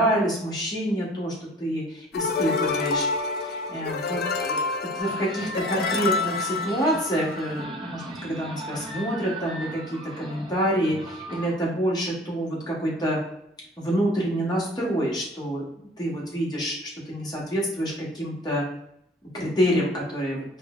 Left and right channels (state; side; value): normal; both; correlation 0.46